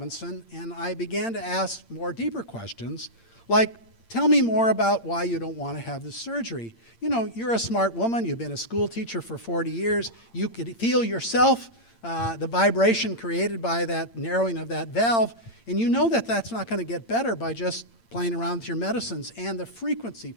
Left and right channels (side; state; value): right; late; 8.7 ms